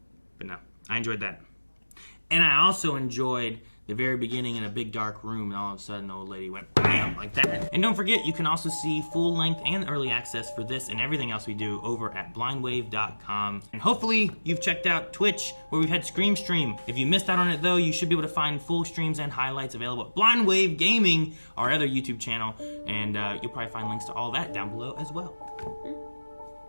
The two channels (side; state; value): both; inverted; correlation -1.00